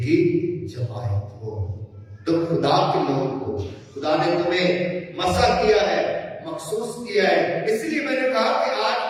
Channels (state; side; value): identical; both; correlation 1.00